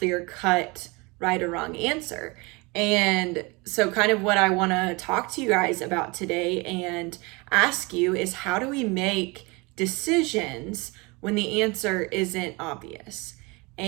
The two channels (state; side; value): quieter; left; 26.4 dB